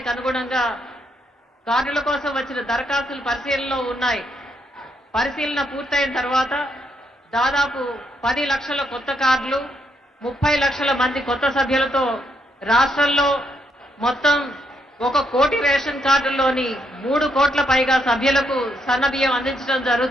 అనుగుణంగా కార్డుల కోసం వచ్చిన దరఖాస్తులు పరిశీలనలో ఉన్నాయి. పరిశీలన పూర్తయిన తర్వాత దాదాపు 10 లక్షల కొత్త కార్డులు, 30 లక్షల మంది కొత్త సభ్యులతో రాష్ట్రంలో మొత్తం 1 కోటి రేషన్ కార్డుల్లోని 3 కోట్ల పైగా సభ్యులకు సన్నబియ్యం అందించడం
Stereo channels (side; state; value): both; normal; correlation 0.77